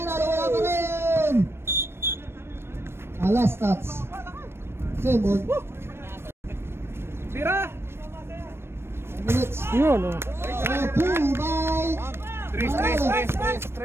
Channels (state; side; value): late; left; 0.12 ms